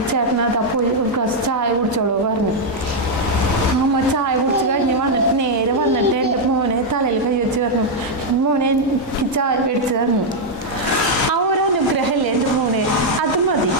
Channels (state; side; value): normal; both; correlation -0.01